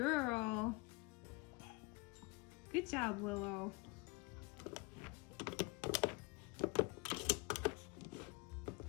Good job, Willow.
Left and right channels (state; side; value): quieter; right; 25.5 dB